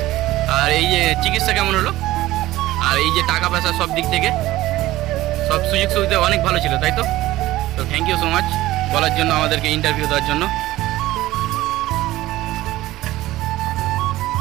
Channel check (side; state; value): left; quieter; 16.6 dB